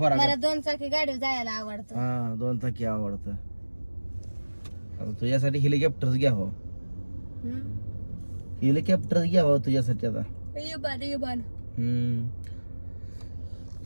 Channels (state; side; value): inverted; both; correlation -1.00